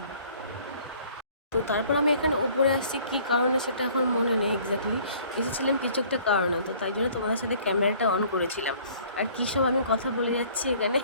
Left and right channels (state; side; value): inverted; both; correlation -0.55